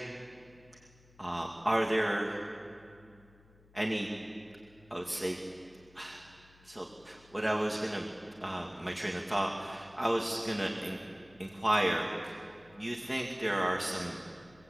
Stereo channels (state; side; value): noise; left; hum, 26 dB below the sound